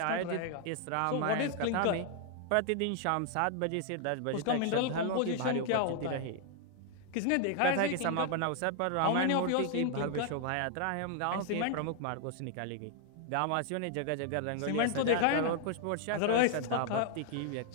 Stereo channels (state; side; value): different; both; correlation 0.00